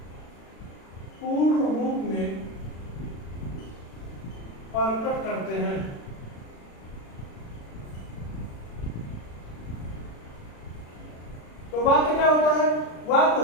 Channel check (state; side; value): late; right; 36 ms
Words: पूर्ण रूप में प्रकट करते हैं। तो वाक्य क्या होता है? वाक्य